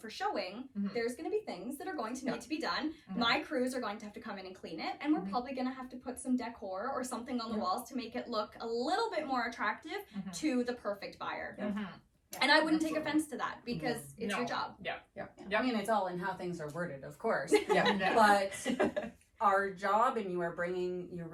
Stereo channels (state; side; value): identical; both; correlation 1.00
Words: showing, there's going to be things that are going to need to be done. My crews are going to have to come in and clean it, and we're probably going to have to put some decor or something on the walls to make it look a little bit more attractive to the perfect buyer. And I wouldn't take offense to that because it's your job. I mean, it's all in how things are worded, of course. Yeah. But our job, and you are bringing your